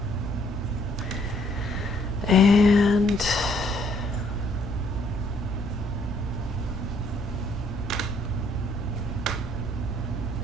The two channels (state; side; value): normal; both; correlation 0.65